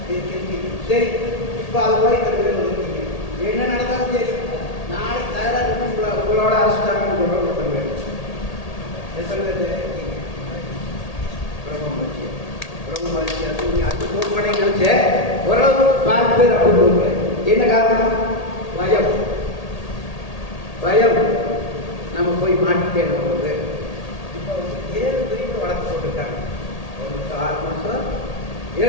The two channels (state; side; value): late; right; 1.8 ms